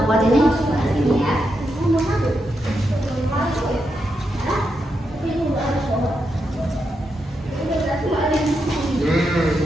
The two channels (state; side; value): normal; both; correlation 0.84